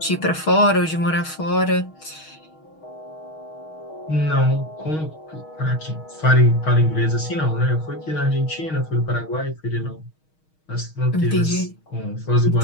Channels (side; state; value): right; late; 6.4 ms